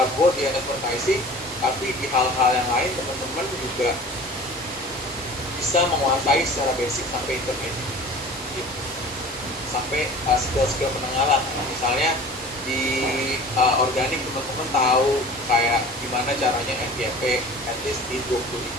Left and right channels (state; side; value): normal; both; correlation 0.42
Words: di advertising, tapi di hal-hal yang lain teman-teman juga bisa menguasai secara basic sampai intermediate gitu. Sampai skill-skill menengah lah. Misalnya di organik teman-teman tahu kayak gimana caranya FYP at least di